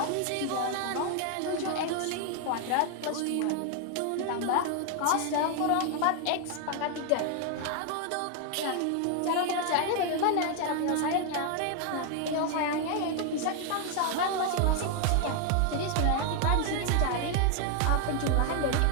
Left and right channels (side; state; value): both; different; correlation 0.00